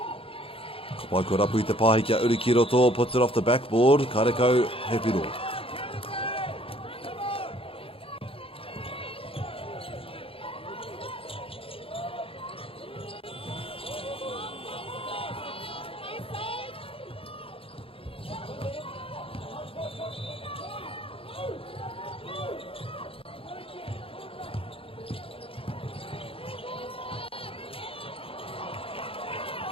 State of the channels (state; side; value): late; right; 0.27 ms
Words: Wai ko rapu I te pāhi kia uri ki roto, puts it off the backboard, karekau he piro.